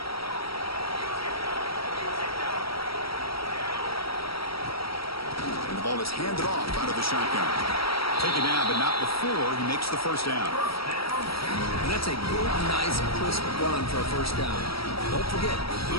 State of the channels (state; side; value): late; right; 0.75 ms